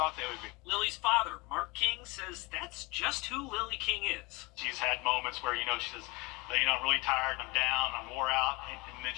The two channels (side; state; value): right; quieter; 25.6 dB